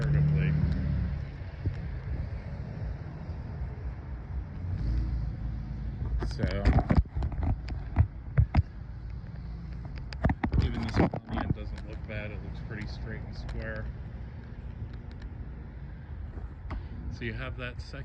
So even this one on the end doesn't look bad. It looks pretty straight and square. So you have that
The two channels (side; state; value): both; identical; correlation 1.00